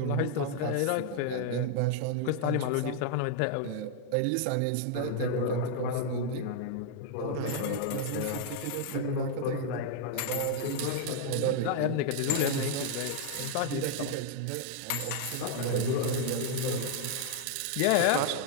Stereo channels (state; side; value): different; both; correlation 0.00